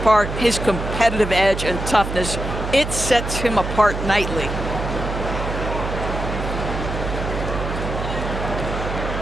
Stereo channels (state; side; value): noise; right; hum, 5 dB below the sound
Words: part, his competitive edge and toughness, it sets him apart nightly.